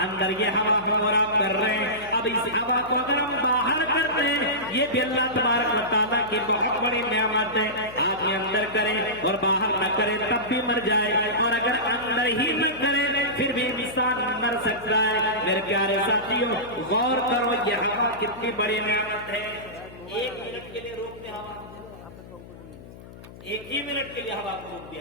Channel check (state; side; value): noise; left; hum, 17 dB below the sound